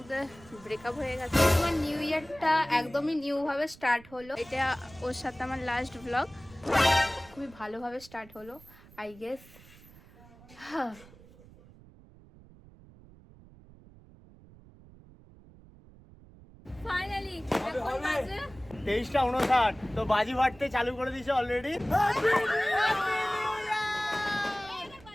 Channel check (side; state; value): right; noise; rumble, 22 dB below the sound